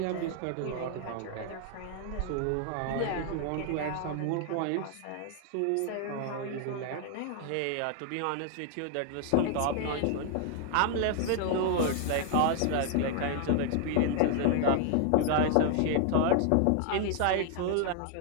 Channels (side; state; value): both; different; correlation 0.00